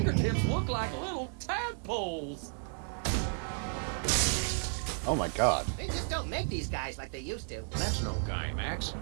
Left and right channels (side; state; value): left; silent; 56 dB below the other